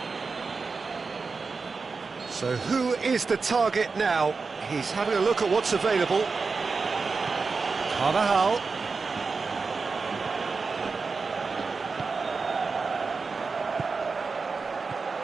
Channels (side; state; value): left; quieter; 4.6 dB